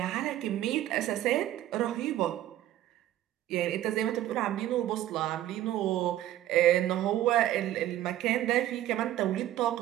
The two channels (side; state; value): left; quieter; 13.2 dB